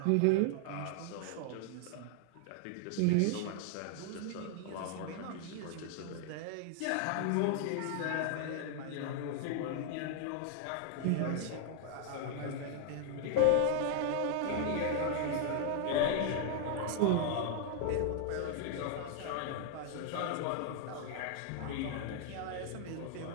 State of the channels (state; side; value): different; both; correlation 0.00